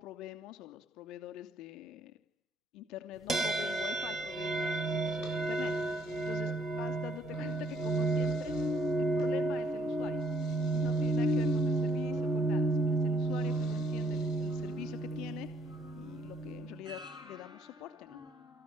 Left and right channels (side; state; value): both; normal; correlation 0.66